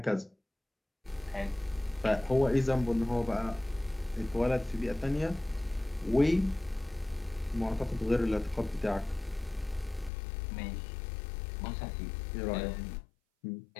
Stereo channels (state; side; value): drops out; right; at 10.1 s